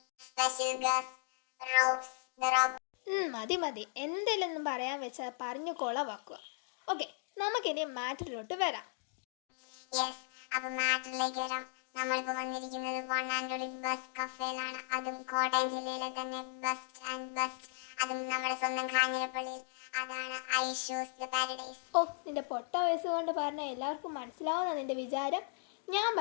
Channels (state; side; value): silent; right; digital silence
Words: special guest, Robes, the Robo. മതി എന്തെങ്കിലും പറയാൻ വെച്ചാൽ പറഞ്ഞു കൊളവാക്കുക. ഓക്കെ, നമുക്കിനി മാറ്ററിലോട്ട് വരാം. യെസ്, അപ്പോൾ മാറ്ററിലേക്ക് വരാം. നമ്മളിപ്പോൾ വന്നിരിക്കുന്നത് വൺ ആൻഡ് ഓൺലി ബെസ്റ്റ് കഫേയിലാണ്. അതും കോട്ടയം ജില്ലയിലെ തന്നെ ബെസ്റ്റ് ആൻഡ് ബെസ്റ്റ്. അതും നമ്മുടെ സ്വന്തം കാഞ്ഞിരപ്പള്ളിയിൽ. അതാണ് ഐഷൂസ് ദ പാരഡൈസ്. ഓ, നിന്റെ പൊട്ട വയസ്സ് കൊണ്ട് പറഞ്ഞാൽ എല്ലാവർക്കും മനസ്സിലാവുന്ന നിന്റെ വിചാരം. ഞാൻ